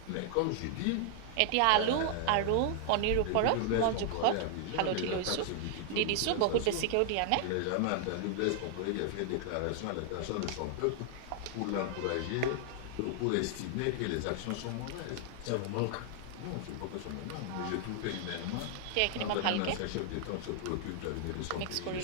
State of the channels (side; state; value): both; different; correlation 0.00